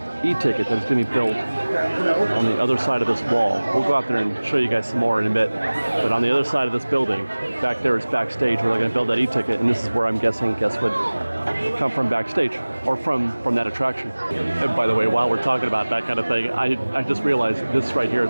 e-ticket that is going to be built on the other side of this wall. We'll go out there and show you guys some more in a bit. But on the other side of this building, back there is backstage where they're going to build that e-ticket, and this is where I'm guessing guests would come from backstage or from that attraction. And by the way, while we're talking about that kind of thing, I just realized this right here,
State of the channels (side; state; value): both; inverted; correlation -1.00